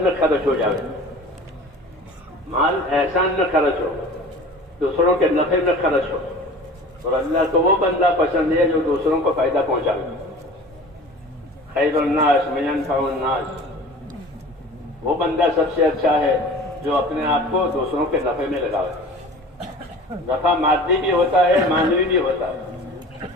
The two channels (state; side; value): normal; both; correlation 0.41